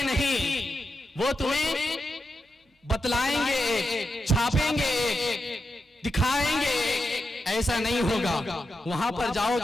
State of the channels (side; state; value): both; normal; correlation 0.87